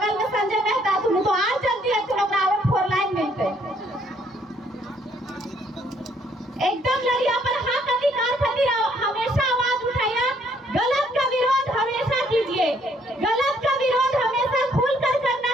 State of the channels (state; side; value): normal; both; correlation 0.67